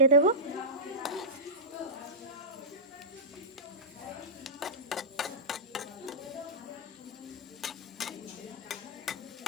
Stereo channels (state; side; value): normal; both; correlation -0.15